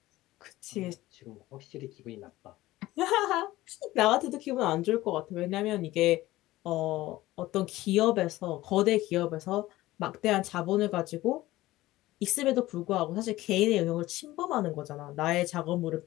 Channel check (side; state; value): right; quieter; 17.1 dB